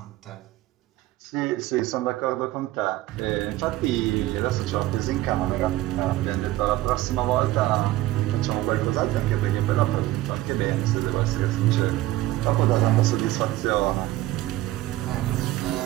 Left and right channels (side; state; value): left; quieter; 16.5 dB